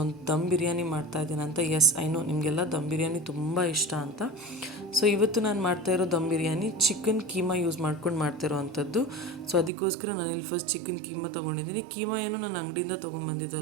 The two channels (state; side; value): drops out; left; at 9.7 s